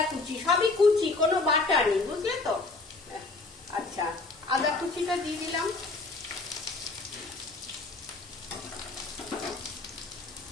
কুচি, সবই কুচি, কোনো বাটা নেই, বুঝলে তো। আচ্ছা, আদা কুচিটা দিয়ে দিলাম।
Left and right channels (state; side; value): quieter; right; 3.5 dB